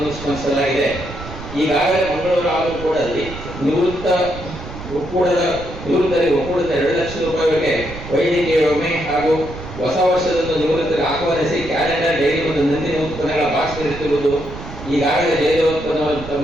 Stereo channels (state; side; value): noise; right; rumble, 12 dB below the sound